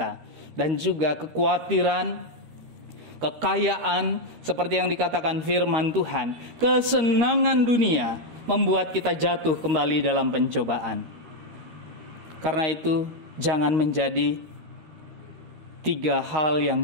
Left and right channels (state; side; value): late; left; 13 ms